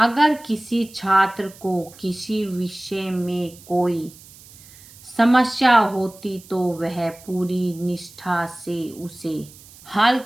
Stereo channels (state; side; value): noise; right; hiss, 22 dB below the sound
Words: किसी छात्र को किसी विषय में कोई समस्या होती तो वह पूरी निष्ठा से उसे हल